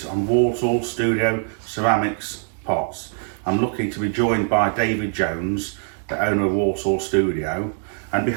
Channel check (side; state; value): left; silent; 58 dB below the other